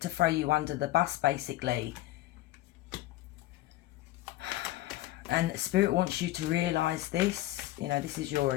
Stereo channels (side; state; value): right; quieter; 16.0 dB